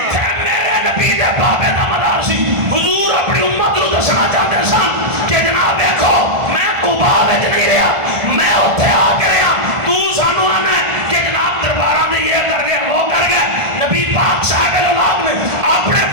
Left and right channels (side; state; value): left; late; 1.5 ms